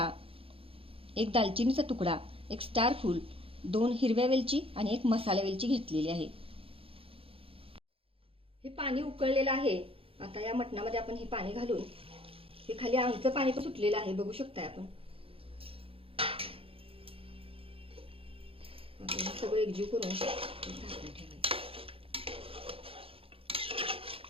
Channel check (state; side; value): late; left; 0.27 ms